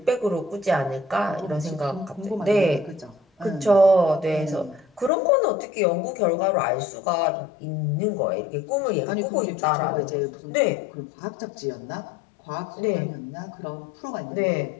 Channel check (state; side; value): drops out; right; at 5.1 s